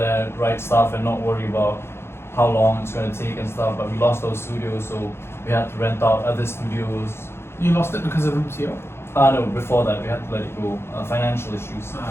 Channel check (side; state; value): right; late; 0.12 ms